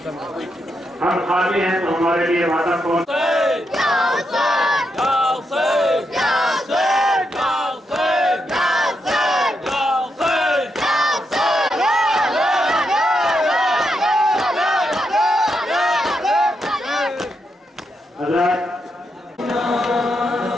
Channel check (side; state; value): both; normal; correlation 0.83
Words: हम खाली हैं तो हमारे लिए वादा कौन?